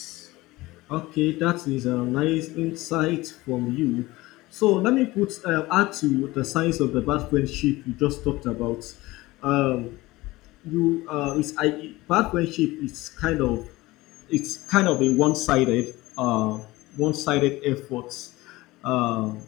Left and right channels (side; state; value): right; quieter; 19.7 dB